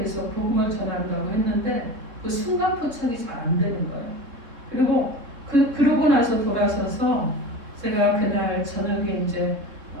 복음을 전한다고 했는데 그 순간 포착이 잘 안 되는 거예요. 그리고 그러고 나서 돌아서서 제가 그날 저녁에 이제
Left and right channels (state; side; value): late; left; 3.7 ms